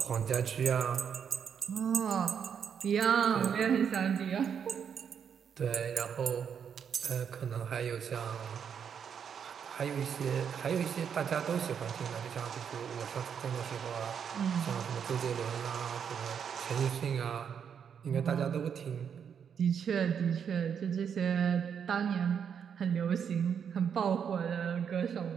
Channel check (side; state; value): left; quieter; 7.6 dB